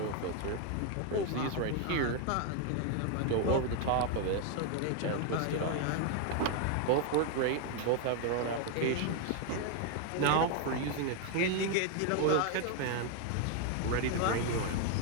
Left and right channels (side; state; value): both; different; correlation 0.01